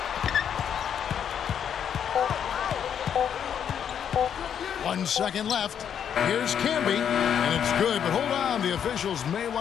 One second left. Here's Camby, and it's good, but hold on. The officials may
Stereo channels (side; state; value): right; quieter; 8.5 dB